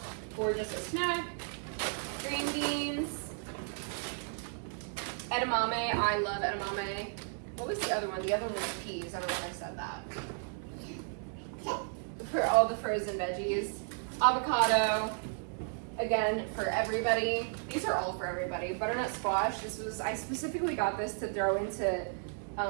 or just a snack. Green beans. Edamame, I love edamame. What was the other one? The other one was peas. I don't know if I said that. For all the frozen veggies. Avocado, again, for everybody. These are all for everybody. Butternut squash, I specifically got this to throw into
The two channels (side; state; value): left; silent; 55 dB below the other